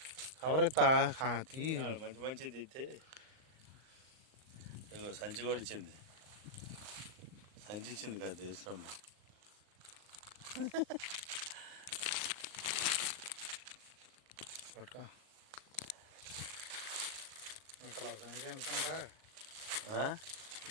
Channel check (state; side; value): late; left; 38 ms